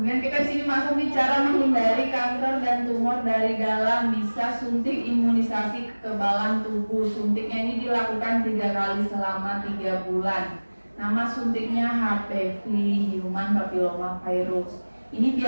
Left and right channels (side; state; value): both; inverted; correlation -1.00